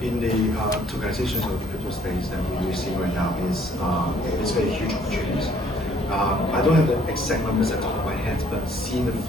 tokenization of the crypto space that we see right now is very huge opportunities. I don't have the exact numbers at the top of my head, but seeing the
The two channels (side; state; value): both; normal; correlation 0.62